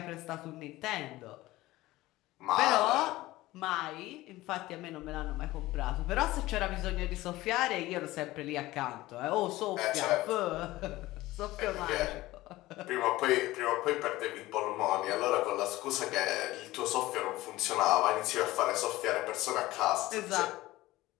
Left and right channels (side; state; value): right; quieter; 17.8 dB